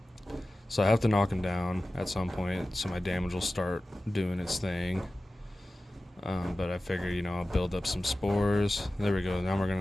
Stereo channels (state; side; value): normal; both; correlation 0.96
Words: So I have to knock him down at some point, so my damage will start doing its thing. But I figure, I'll build up some spores. There we go. Now we're